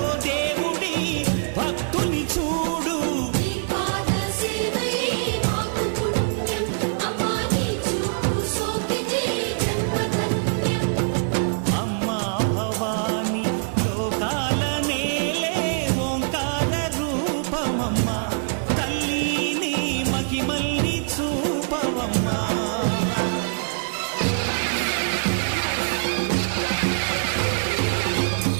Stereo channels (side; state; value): left; silent; digital silence